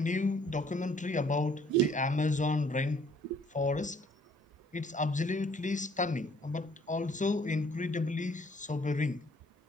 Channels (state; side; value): normal; both; correlation 0.60